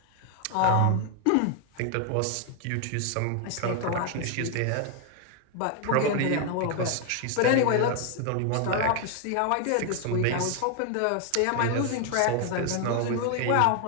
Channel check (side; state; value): both; different; correlation 0.00